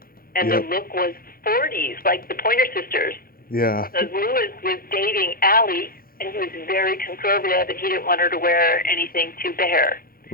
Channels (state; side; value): late; right; 0.43 ms